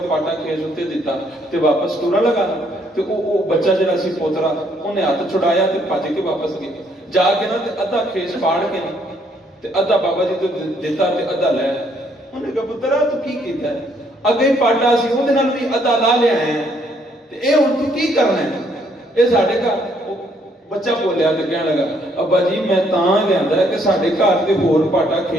پاٹا کھیس اُتے دتا تے واپس ٹرن لگا تے او بچہ جڑا سی پوترا اونے ہاتھ چھڑایا تے بھج کے واپس گیا جا کے نا تے ادھا کھیس پاڑ کے تے ادھا بابا جی تو دتا تے ادھا لے انہیں کہا پترا تو کی کیتا ہے اگے پاٹا سی اودے نال بھی ادھا لا لیا ہے تے اے ہن تو کی کرنا ہے اے ساڈے گھر بچہ بولیا تے کہنے لگا ابا جی میں تاں لیندا ہے کہ ساڈے گھر تے ہور پاٹا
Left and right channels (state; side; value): normal; both; correlation 0.68